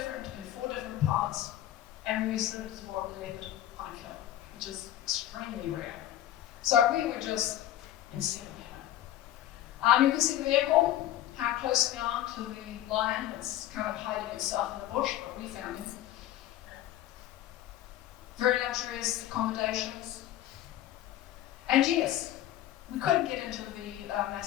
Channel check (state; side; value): quieter; right; 13.0 dB